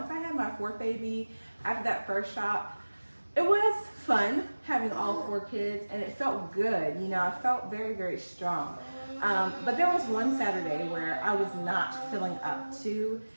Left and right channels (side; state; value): both; inverted; correlation -1.00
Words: I had my fourth baby, after that first shop, it was fun having all 4 kids and it felt good. You know, I felt very, very strong. But there was one Saturday where I was not feeling up to